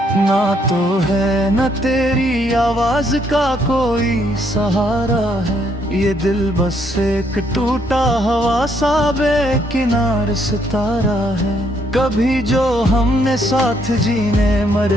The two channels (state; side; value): normal; both; correlation 0.71